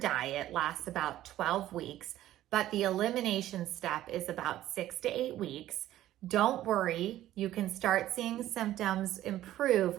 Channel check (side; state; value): left; quieter; 13.7 dB